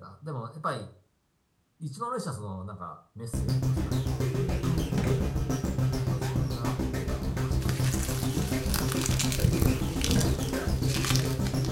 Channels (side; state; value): both; identical; correlation 1.00